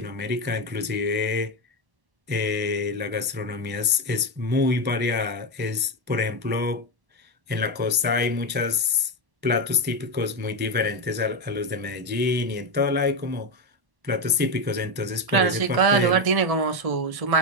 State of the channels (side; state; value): left; late; 1.1 ms